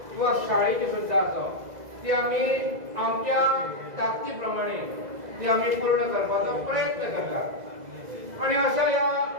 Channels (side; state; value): left; late; 2.0 ms